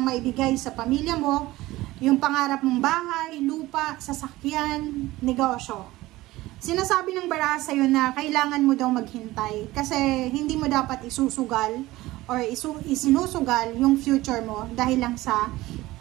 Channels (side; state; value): left; quieter; 18.0 dB